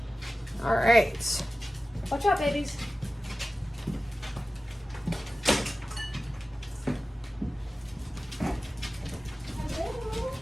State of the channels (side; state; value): both; normal; correlation 0.95